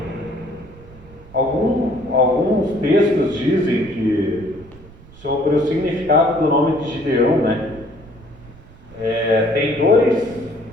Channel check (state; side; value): noise; right; rumble, 22 dB below the sound